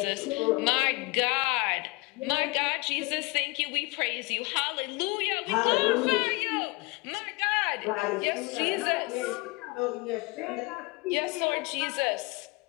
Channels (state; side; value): quieter; right; 25.9 dB